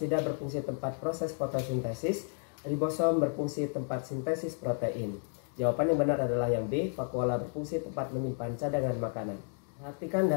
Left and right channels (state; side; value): silent; right; 56 dB below the other